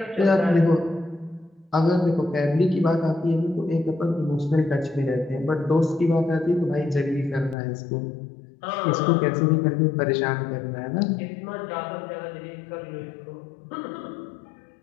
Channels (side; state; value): right; drops out; at 7.6 s